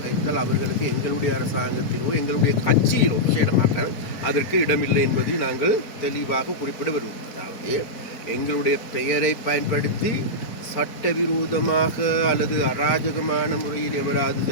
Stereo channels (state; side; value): late; right; 4.4 ms